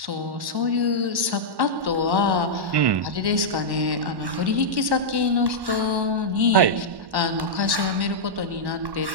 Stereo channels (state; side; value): late; left; 1.1 ms